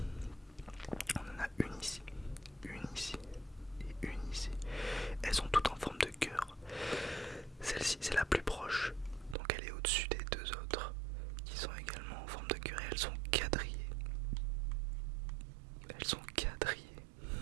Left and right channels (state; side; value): drops out; left; at 9.3 s